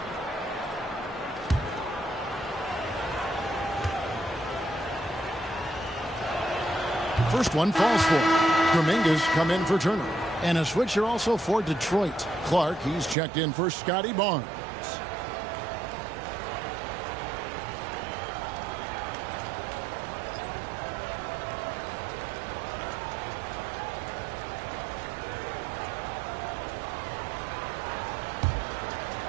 First one falls for Kuminga's come in for Turner. And a switcher also for Detroit. Clark, he's checked in for Scotty Barnes.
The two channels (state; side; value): drops out; left; at 13.2 s